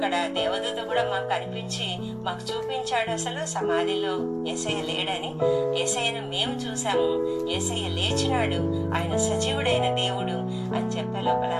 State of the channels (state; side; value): identical; both; correlation 1.00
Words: దేవదూత కూడా మాకు కనిపించి మాకు చూపించాడు అసలు సమాధిలో యేసయ్య లేడని. యేసయ్యను మేము చూసాము, యేసయ్య లేచినాడు, ఆయన సజీవుడైన దేవుడు అని చెప్పే లోపల